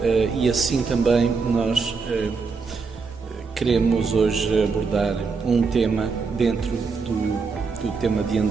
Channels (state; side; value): quieter; left; 4.8 dB